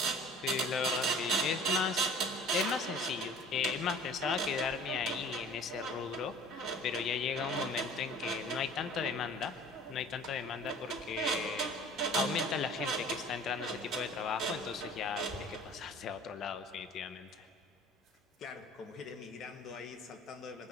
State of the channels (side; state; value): both; normal; correlation 0.47